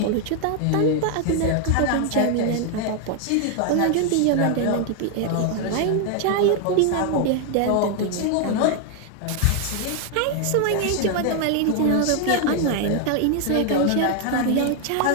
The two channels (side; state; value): both; different; correlation 0.00